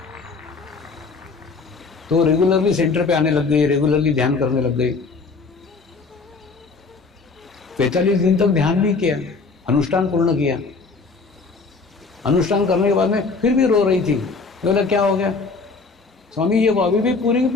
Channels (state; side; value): quieter; right; 4.3 dB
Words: तो रेगुलरली सेंटर पे आने लग गई, रेगुलरली ध्यान करने लग गई। 45 दिन तक ध्यान भी किया, अनुष्ठान पूर्ण किया। अनुष्ठान करने के बाद में फिर भी रो रही थी। बोला क्या हो गया? स्वामी ये वो अभी भी पूरी की